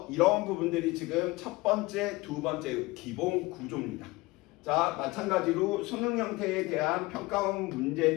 이런 부분들이 지금 첫 번째, 두 번째 기본 구조입니다. 자, 마찬가지로 수능 형태에 대한 평가원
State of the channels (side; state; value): right; quieter; 22.0 dB